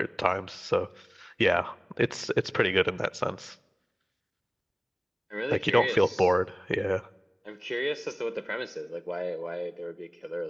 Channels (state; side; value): identical; both; correlation 1.00